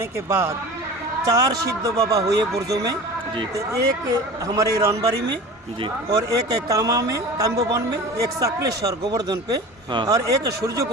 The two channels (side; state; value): both; normal; correlation 0.36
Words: के बाद 4 सिद्ध बाबा हुए ब्रजों में। जी तो एक हमारे रनबारी में जी और एक कामा में काम्बोवन में, एक साकलेश्वर गोवर्धन पे, हाँ। और एक सूर्य